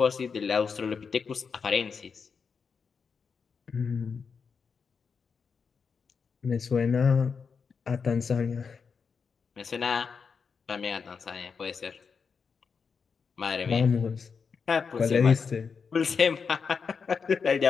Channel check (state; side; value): quieter; right; 5.7 dB